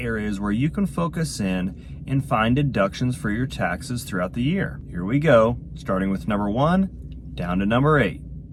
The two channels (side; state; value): both; identical; correlation 1.00